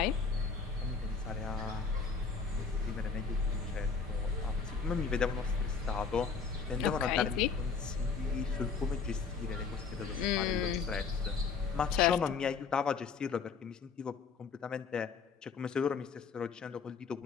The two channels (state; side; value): quieter; right; 5.3 dB